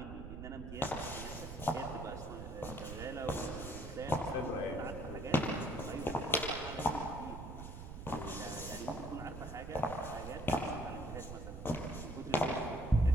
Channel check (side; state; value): right; noise; rumble, 9 dB below the sound